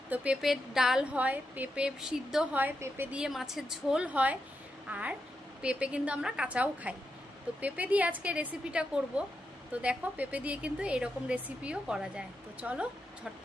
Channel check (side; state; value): both; normal; correlation 0.85